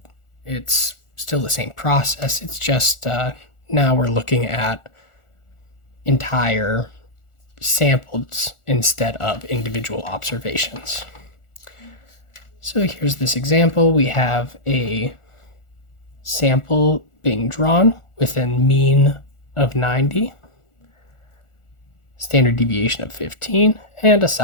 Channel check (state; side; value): late; right; 1.4 ms